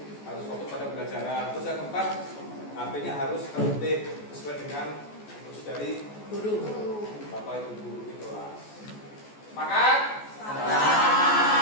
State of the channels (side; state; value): right; late; 14 ms